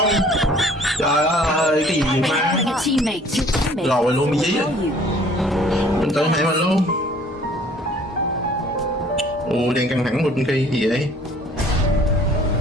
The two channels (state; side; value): normal; both; correlation 0.55